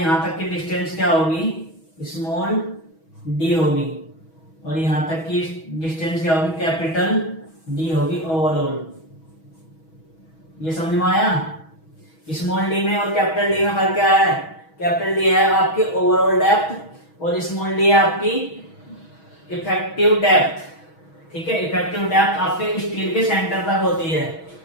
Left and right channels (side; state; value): right; late; 6.2 ms